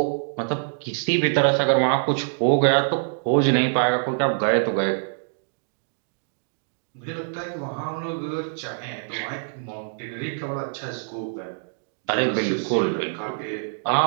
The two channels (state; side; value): silent; left; digital silence